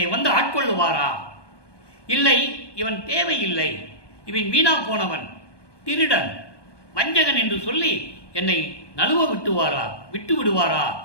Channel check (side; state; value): right; late; 1.2 ms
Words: வந்து ஆட்கொள்ளுவாரா? இல்லை, இவன் தேவையில்லை, இவன் வீணா போனவன், திருடன், வஞ்சகன் என்று சொல்லி என்னை நழுவ விட்டு விடுவாரா